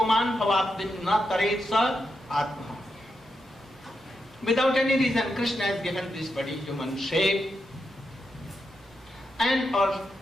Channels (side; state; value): both; normal; correlation 0.85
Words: bhavabdin na taretsa atma. Without any reason, Krishna has given this body human shape, and